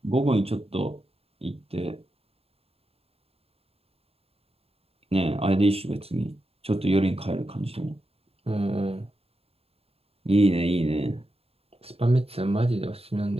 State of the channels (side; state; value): left; late; 0.29 ms